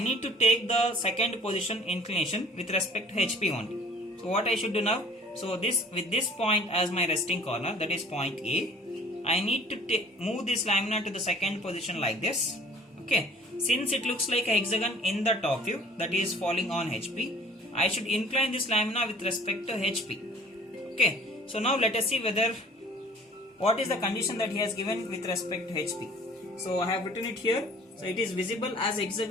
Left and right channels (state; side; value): normal; both; correlation 0.51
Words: to take the second position inclination with respect to HP only. So what I should do now? So with this point as my resting corner, that is point A, I need to move this lamina to the second position like this. Okay. Since it looks like a hexagon in the top view, that is falling on HP, I should incline this lamina with respect to HP. Okay. So now let us see what is the condition that he has given with respect to HP. So I have written it here. So it is visible as